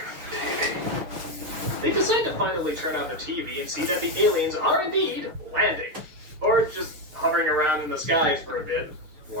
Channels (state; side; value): late; left; 6.7 ms